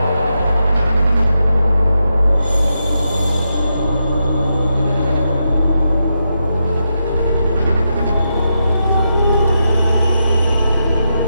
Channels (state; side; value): inverted; both; correlation -0.85